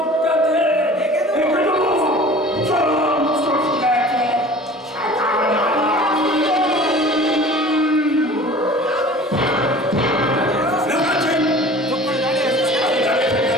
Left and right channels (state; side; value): normal; both; correlation 0.43